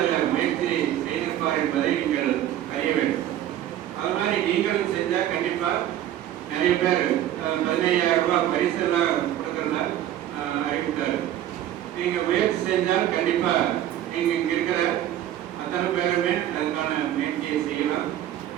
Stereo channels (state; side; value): quieter; left; 12.1 dB